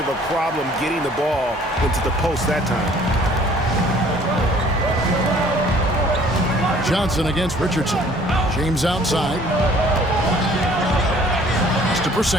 a problem getting the ball into the post that time. Johnson against Richardson. James outside. It's to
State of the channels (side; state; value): both; normal; correlation 0.55